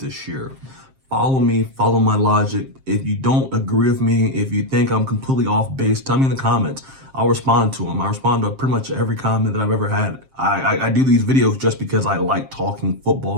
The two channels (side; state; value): left; late; 7.5 ms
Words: year. Follow me, follow my logic. If you don't agree with me, if you think I'm completely off base, tell me in the comments. I'll respond to them. I respond to pretty much every comment that I've ever had. I do these videos just because I like talking